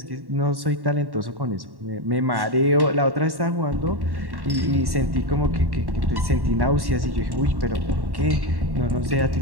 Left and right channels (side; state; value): left; late; 1.1 ms